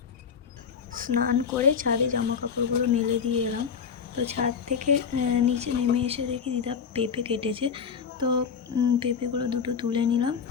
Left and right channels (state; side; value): quieter; right; 6.5 dB